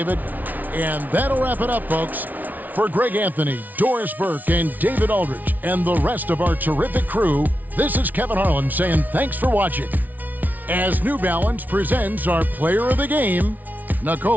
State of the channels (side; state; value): left; late; 0.079 ms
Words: And that'll wrap it up, folks. For Greg Anthony, Doris Burke, and David Aldridge, and the rest of our terrific crew, this is Kevin Harlan saying thanks for watching. As New Balance presents our player of the game,